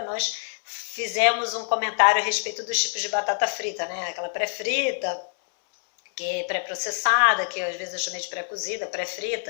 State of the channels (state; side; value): silent; right; 61 dB below the other